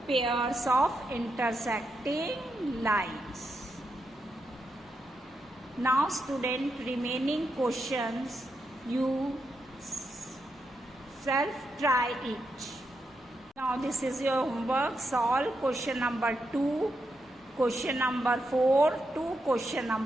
pairs of intersecting lines. Now student, remaining questions you self try it. Now this is your homework. Solve question number 2, question number 4 to question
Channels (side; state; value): both; normal; correlation 0.84